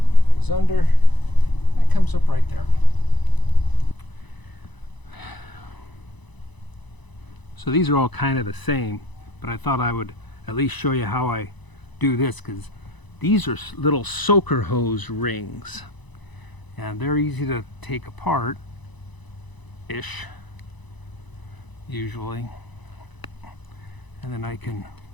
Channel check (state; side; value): late; right; 1.0 ms